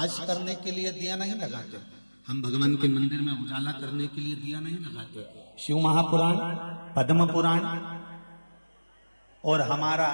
करने के लिए दिया नहीं लगाते, हम भगवान के मंदिर में उजाला करने के लिए दिया नहीं लगाते। शिव महापुराण, पद्म पुराण और हमारा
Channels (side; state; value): both; inverted; correlation -1.00